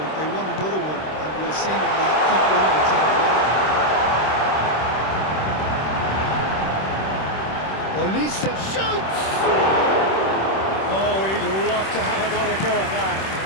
They want another one, and will seemingly keep going until they get it. Olise shoots! Oh, he'd love to have another go at that.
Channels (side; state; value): right; late; 26 ms